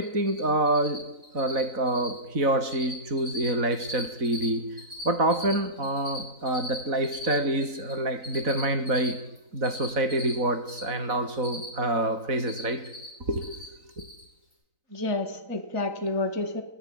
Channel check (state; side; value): late; left; 3.9 ms